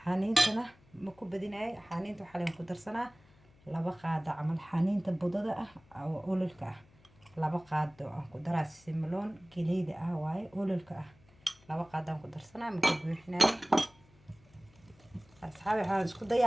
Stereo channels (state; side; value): noise; left; hum, 28 dB below the sound